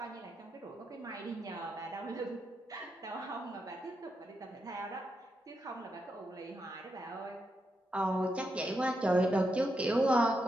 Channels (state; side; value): normal; both; correlation 0.84